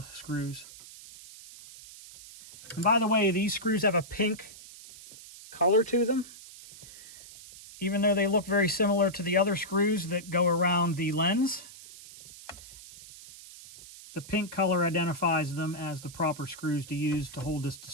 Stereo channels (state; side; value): noise; right; hiss, 17 dB below the sound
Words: screws. And by the way, these screws have a pink color to them. Even though they look very similar to the other screws that go around the lens, the pink color identifies them as the proper screws to use to hold this